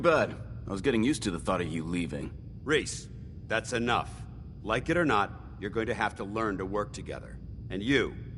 I was getting used to the thought of you leaving. Reese, that's enough. Like it or not, you're going to have to learn to work together. And you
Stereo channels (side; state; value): both; identical; correlation 1.00